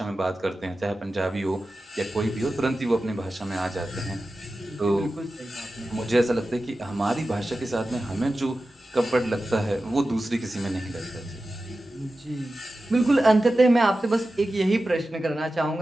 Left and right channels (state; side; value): normal; both; correlation 0.94